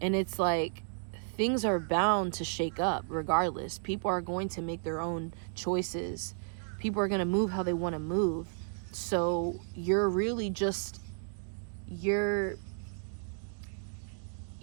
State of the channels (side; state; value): left; silent; digital silence